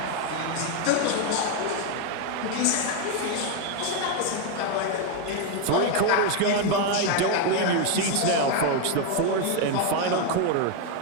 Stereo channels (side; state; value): both; different; correlation 0.01